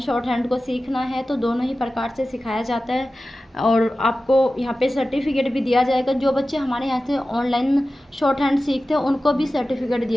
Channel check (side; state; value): both; normal; correlation 0.95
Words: शॉर्ट हैंड को सीखना है तो दोनों ही प्रकार से सिखाया जाता है और आपको यहाँ पे सर्टिफिकेट भी दिया जाएगा। जो बच्चे हमारे यहाँ से ऑनलाइन शॉर्ट हैंड सीखते हैं उनको भी सर्टिफिकेट